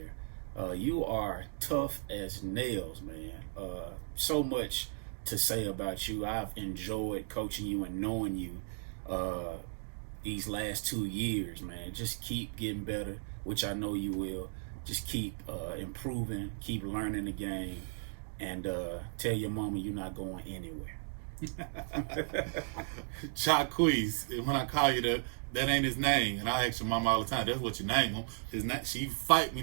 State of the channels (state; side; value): silent; left; digital silence